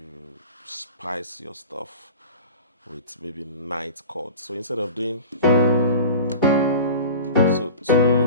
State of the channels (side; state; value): both; inverted; correlation -0.36